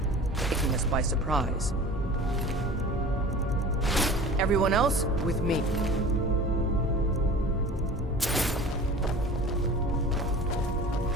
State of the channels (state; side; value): normal; both; correlation 0.40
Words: taking us by surprise. Everyone else, with me.